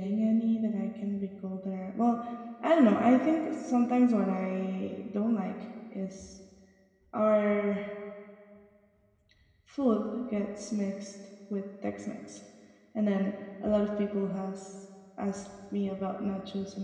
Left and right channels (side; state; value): both; identical; correlation 1.00